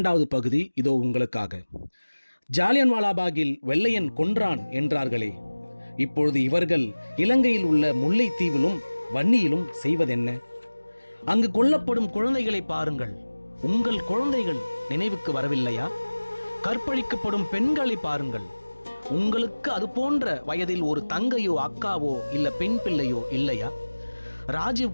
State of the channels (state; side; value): inverted; both; correlation -1.00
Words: பகுதி இதோ உங்களுக்காக. ஜாலியன்வாலாபாகில் வெள்ளையன் கொன்றான் என்றார்களே, இப்பொழுது இவர்கள் இலங்கையில் உள்ள முல்லைத்தீவிலும் வன்னியிலும் செய்வதென்ன? அங்கு கொல்லப்படும் குழந்தைகளை பாருங்கள். உங்கள் குழந்தைகள் நினைவுக்கு வரவில்லையா? கற்பழிக்கப்படும் பெண்களை பாருங்கள். உங்களுக்கு அது போன்ற வயதில் ஒரு தங்கையோ அக்காவோ இல்ல பெண் பிள்ளையோ இல்லையா? ராஜீவ்